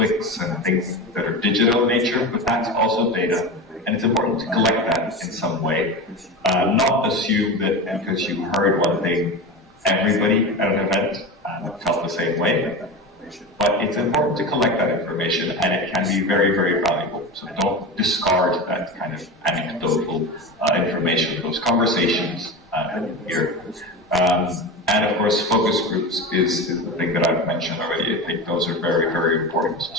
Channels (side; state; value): both; normal; correlation 0.25